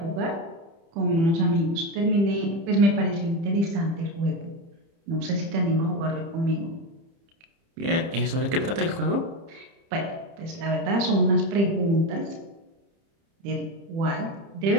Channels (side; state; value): left; late; 30 ms